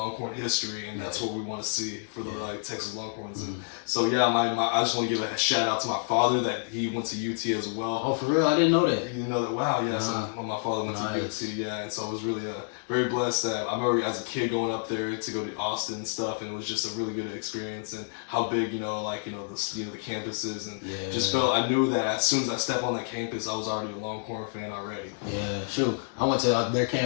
history, and that's what we want to see for the Texas Longhorns. And so I just want to give a shout out to my father that he went to UT as well. Oh, for real? I didn't know that. You didn't know that? Wow, yeah. So my father went to UT, and so I was really very blessed that I remember as a kid going up there to go to Austin and stuff, and it was just a really good experience, and how big the campus is, and just felt I knew that as soon as I stepped on that campus, I was already a Longhorn fan already. Yeah, shoot. I went to their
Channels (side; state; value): right; silent; digital silence